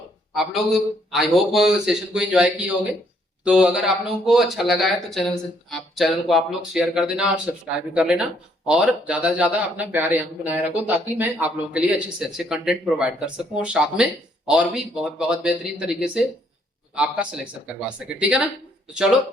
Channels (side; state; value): both; normal; correlation 0.68